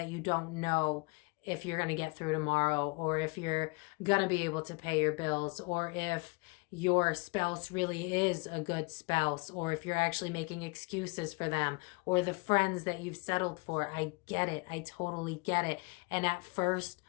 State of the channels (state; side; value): quieter; right; 29.6 dB